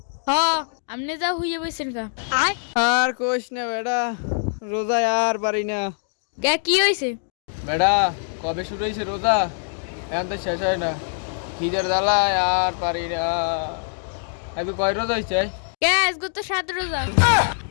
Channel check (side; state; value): right; silent; 63 dB below the other